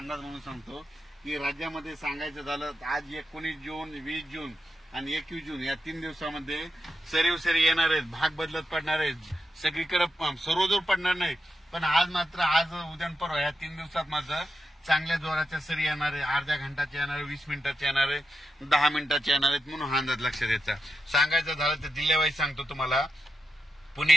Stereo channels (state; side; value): normal; both; correlation 0.87